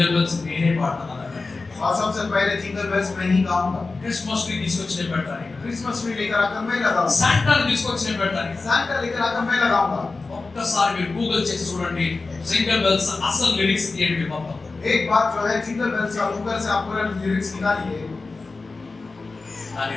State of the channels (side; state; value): right; quieter; 3.8 dB